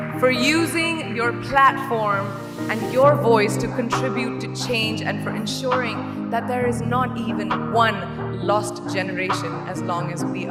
For using your platform and your voice to contribute to change, and for ensuring that there is not even one lost generation as long as we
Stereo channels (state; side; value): identical; both; correlation 1.00